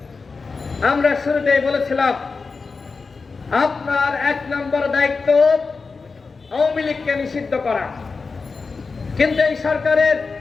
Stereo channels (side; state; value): right; quieter; 4.5 dB